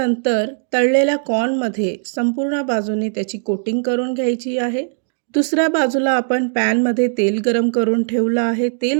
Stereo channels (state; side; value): silent; left; digital silence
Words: तळलेल्या कॉर्नमध्ये संपूर्ण बाजूने त्याची कोटिंग करून घ्यायची आहे. दुसऱ्या बाजूला आपण पॅनमध्ये तेल गरम करून ठेवलं आहे.